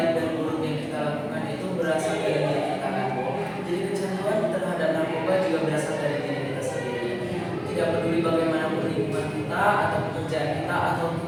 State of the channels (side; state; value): both; identical; correlation 1.00